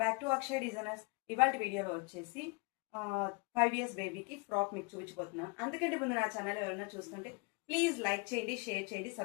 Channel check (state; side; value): quieter; right; 30.6 dB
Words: back to Akshay designers. ఇవాళ వీడియోలో వచ్చేసి 5 years బేబీకి ఫ్రాక్ మీకు చూపించబోతున్నాను. అందుకంటే ముందు నా ఛానల్ ఎవరైనా చూస్తుంటే ప్లీజ్ లైక్ చేయండి, షేర్ చేయండి,